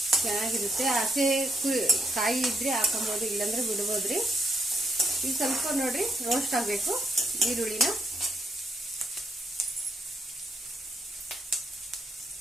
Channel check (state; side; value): normal; both; correlation 0.77